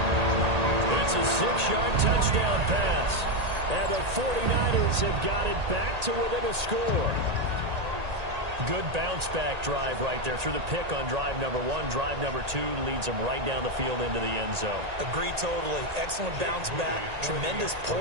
It's a 6-yard touchdown pass. And the 49ers have got it back to within a score. Good bounce-back drive right there through the pick on drive number 1. Drive number 2 leads them right down the field into the end zone. Agree totally. Excellent bounce back. Tremendous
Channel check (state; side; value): late; left; 1.8 ms